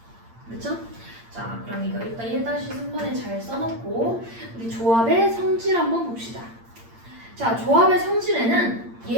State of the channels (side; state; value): left; late; 8.7 ms